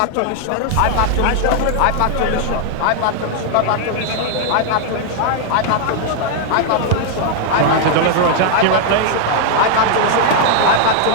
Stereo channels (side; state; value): both; different; correlation 0.00